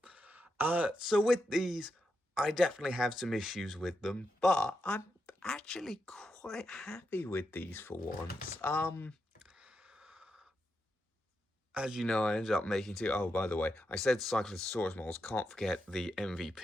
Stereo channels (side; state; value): both; normal; correlation 0.85